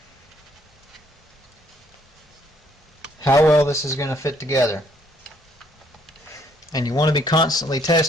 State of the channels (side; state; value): both; normal; correlation 0.67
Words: how well this is going to fit together. And you want to be constantly